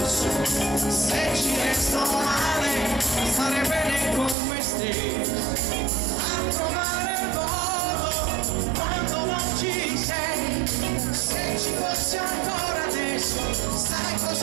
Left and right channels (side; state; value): left; drops out; at 4.4 s